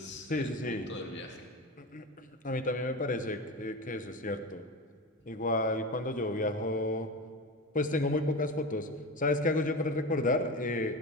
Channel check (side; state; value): both; normal; correlation 0.26